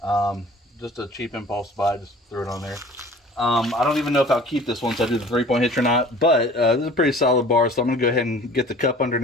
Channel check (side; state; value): both; normal; correlation 0.46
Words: Just a cheap impulse buy, just threw it on there. I don't even know if I'll keep this once I do the 3-point hitch or not, but this is a pretty solid bar, so I'm going to go ahead and get the cup